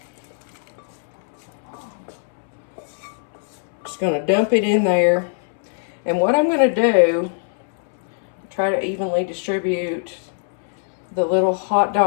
Just going to dump it in there. And what I'm going to do, try to evenly distribute the little hot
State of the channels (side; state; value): right; silent; 64 dB below the other